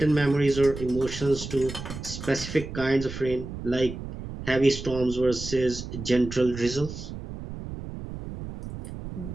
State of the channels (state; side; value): noise; right; rumble, 9 dB below the sound